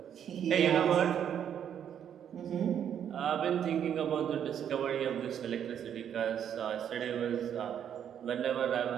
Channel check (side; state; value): left; quieter; 9.1 dB